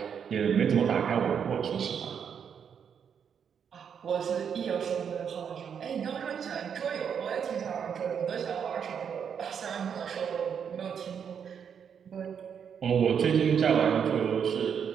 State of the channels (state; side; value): quieter; left; 7.5 dB